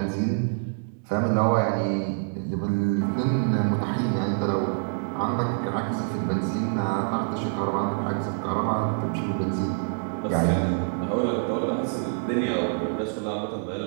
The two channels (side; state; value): left; silent; 61 dB below the other